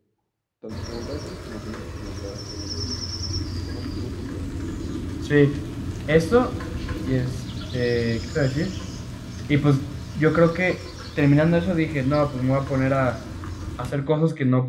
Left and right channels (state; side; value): identical; both; correlation 1.00